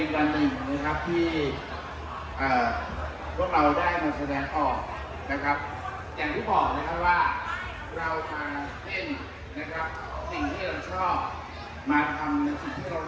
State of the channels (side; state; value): both; identical; correlation 1.00